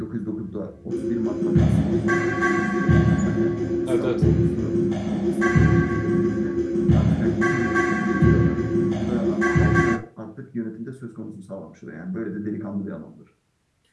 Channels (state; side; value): identical; both; correlation 1.00